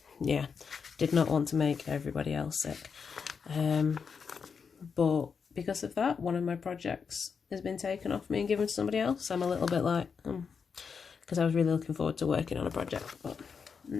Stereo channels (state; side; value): quieter; right; 6.0 dB